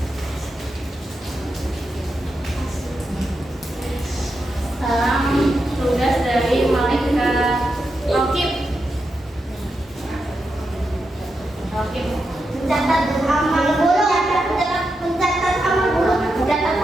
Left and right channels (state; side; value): normal; both; correlation 0.87